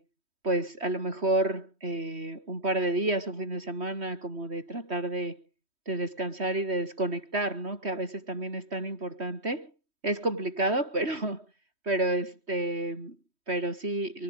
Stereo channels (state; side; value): late; left; 3.1 ms